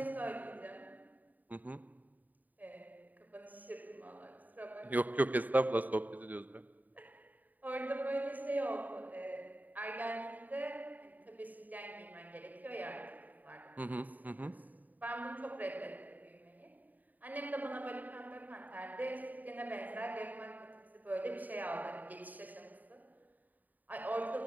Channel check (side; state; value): left; late; 0.083 ms